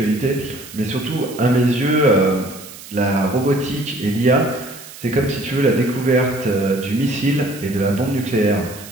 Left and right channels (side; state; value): right; noise; hiss, 16 dB below the sound